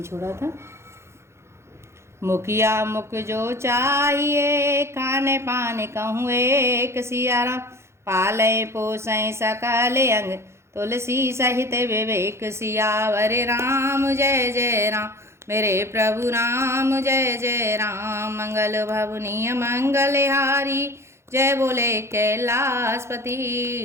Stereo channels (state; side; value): late; left; 0.13 ms